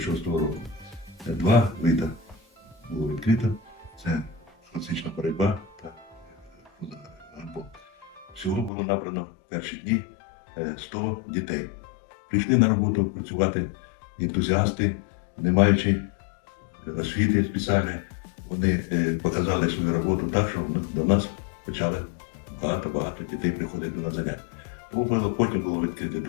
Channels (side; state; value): right; drops out; at 8.7 s